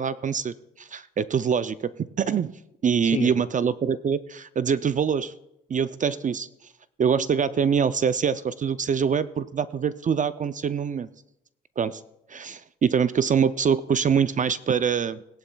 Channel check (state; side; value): quieter; left; 6.4 dB